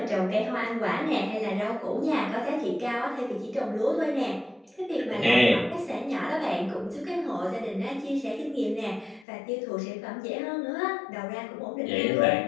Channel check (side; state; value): right; drops out; at 9.2 s